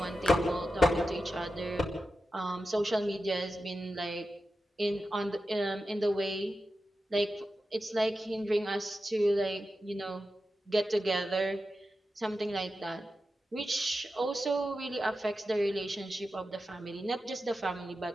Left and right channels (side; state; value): both; normal; correlation 0.91